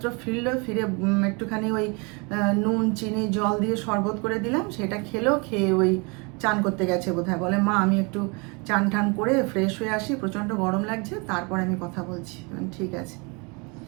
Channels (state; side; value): quieter; left; 30.4 dB